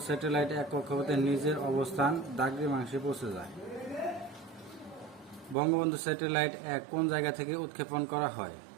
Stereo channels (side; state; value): left; drops out; at 5.6 s